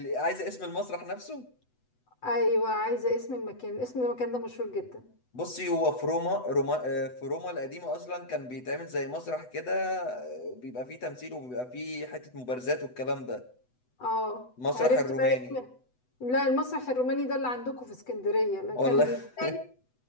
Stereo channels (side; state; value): right; late; 8.0 ms